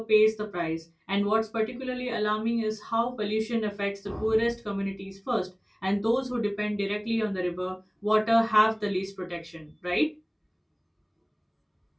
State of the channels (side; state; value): both; identical; correlation 1.00